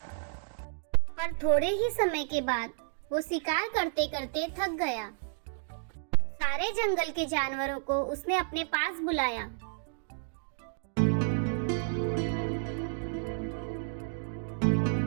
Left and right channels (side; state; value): left; silent; digital silence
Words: पर थोड़े ही समय के बाद वो शिकार करते करते थक गया। सारे जंगल के जानवरों को उसने अपने पास बुलाया।